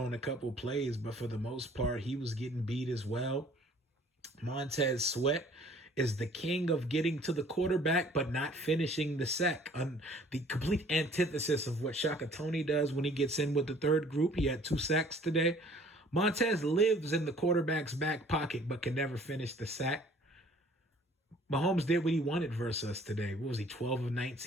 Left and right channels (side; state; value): both; normal; correlation 0.54